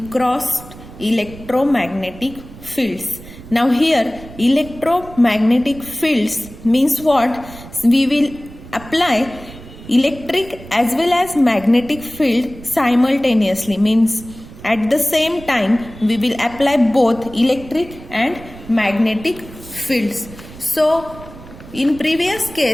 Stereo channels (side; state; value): right; noise; rumble, 17 dB below the sound